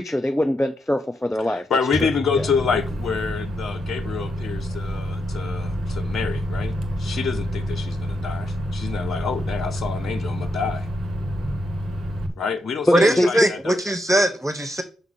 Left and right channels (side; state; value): both; normal; correlation 0.82